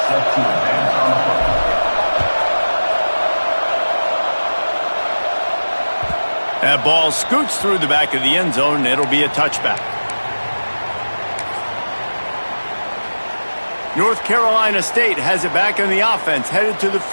That ball scoots through the back of the end zone, and it'll be a touchback. North Carolina State has it back on the offense, headed to the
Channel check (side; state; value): both; inverted; correlation -1.00